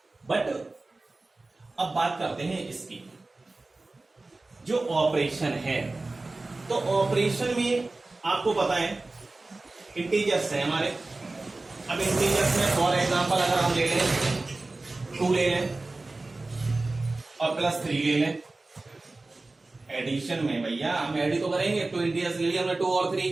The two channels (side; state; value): left; quieter; 3.2 dB